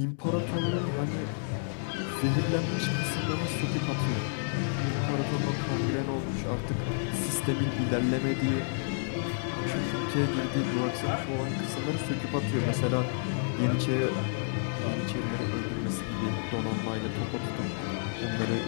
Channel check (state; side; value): silent; right; digital silence